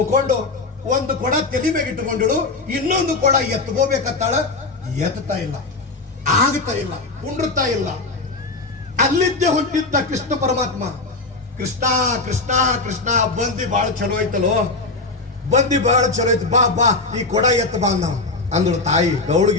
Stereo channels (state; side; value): quieter; right; 3.6 dB